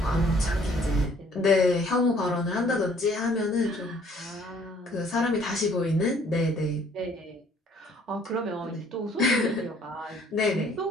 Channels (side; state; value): both; normal; correlation 0.59